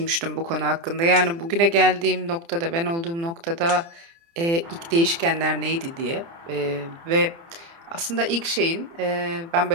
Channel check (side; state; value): left; late; 30 ms